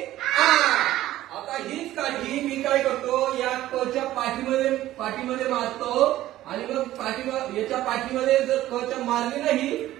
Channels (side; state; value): left; quieter; 14.6 dB